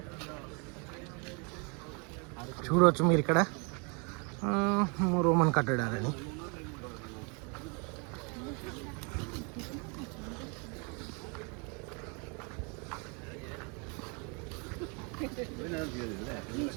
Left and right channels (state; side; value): quieter; left; 33.6 dB